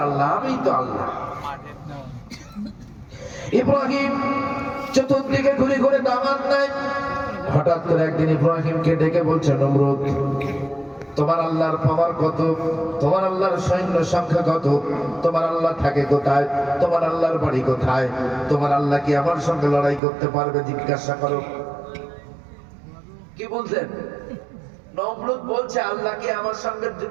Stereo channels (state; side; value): drops out; left; at 20.0 s